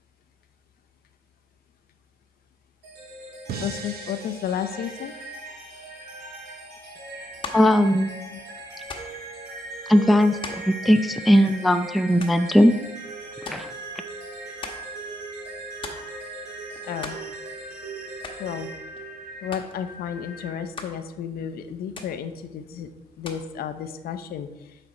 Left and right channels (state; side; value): normal; both; correlation 0.85